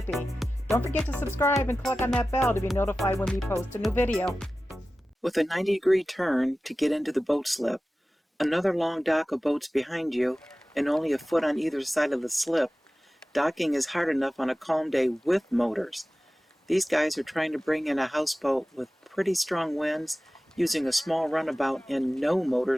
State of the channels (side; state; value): both; normal; correlation 0.96